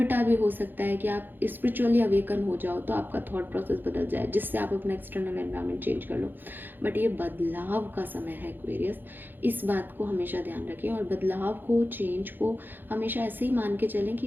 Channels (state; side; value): late; left; 0.092 ms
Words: भी हो सकता है कि आप स्पिरिचुअली अवेकन हो जाओ तो आपका थॉट प्रोसेस बदल जाए, जिससे आप अपना एक्सटर्नल एनवायरनमेंट चेंज कर लो। बट ये बदलाव का समय है एक्वेरियस, इस बात को हमेशा ध्यान रखें। और बदलाव को, चेंज को हमेशा ऐसे ही मान के चलें